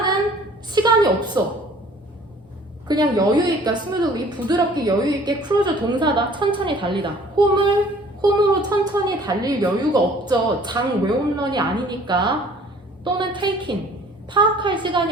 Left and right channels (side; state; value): both; normal; correlation 0.53